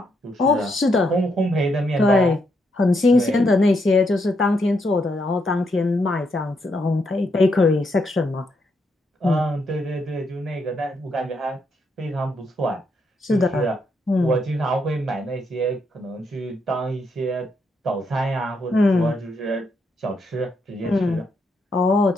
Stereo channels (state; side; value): normal; both; correlation 0.78